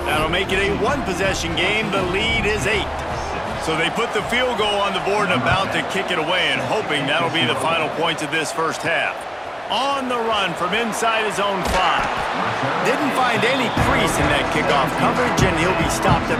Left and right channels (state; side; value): identical; both; correlation 1.00